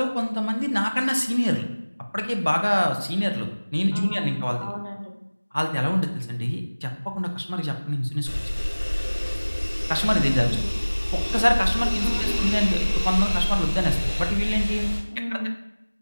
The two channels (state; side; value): inverted; both; correlation -1.00